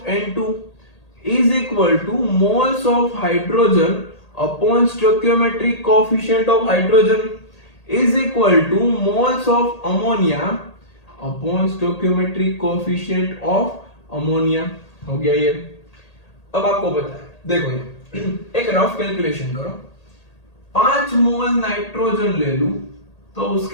N2 is equal to moles of hydrogen upon stoichiometric coefficient of hydrogen is equal to moles of ammonia upon stoichiometric coefficient of ammonia। हो गया ये। अब आपको पता है, देखो ये एक रफ कैलकुलेशन करो, 5 मोल नाइट्रोजन ले लूं तो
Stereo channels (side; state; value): right; late; 1.8 ms